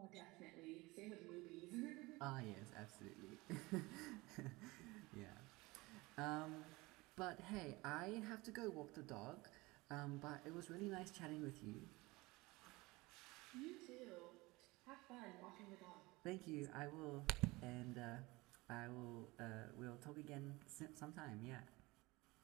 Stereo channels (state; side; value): quieter; left; 22.5 dB